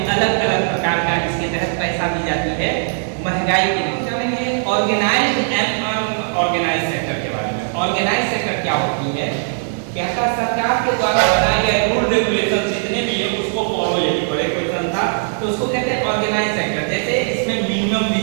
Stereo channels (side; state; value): left; silent; digital silence